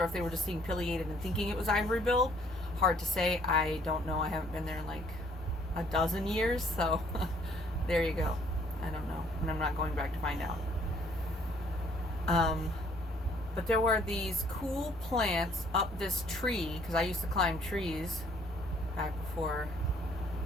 if they were just being pileated and thinking it was ivory-billed. Hard to say. I don't know. I haven't been there in like a dozen years, so there you go. I don't know, and I'm not going back to find out. But there were these cool plants up this tree, because I used to climb trees back before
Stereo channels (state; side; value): normal; both; correlation 0.62